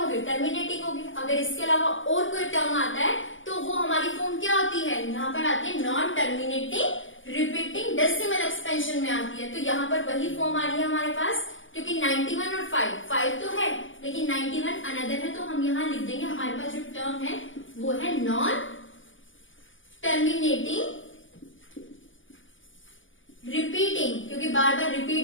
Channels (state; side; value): late; right; 0.57 ms